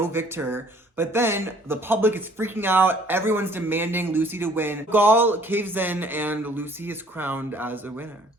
victor. But then the public is freaking out. Everyone's demanding Lucy to win. Gall caves in and Lucy is crowned as a winner.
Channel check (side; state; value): both; normal; correlation 0.57